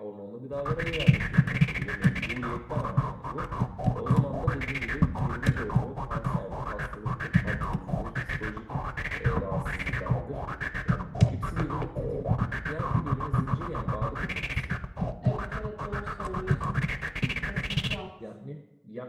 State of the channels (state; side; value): identical; both; correlation 1.00